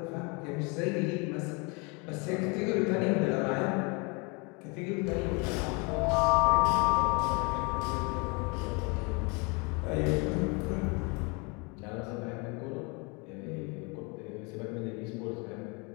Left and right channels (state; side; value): quieter; right; 30.6 dB